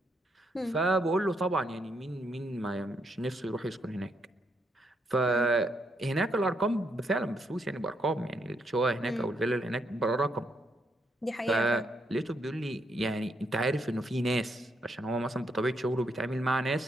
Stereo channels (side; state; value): both; normal; correlation 0.77